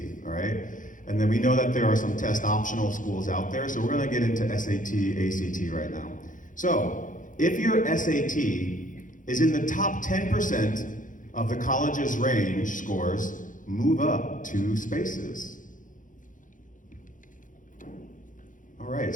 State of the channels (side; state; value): right; late; 0.38 ms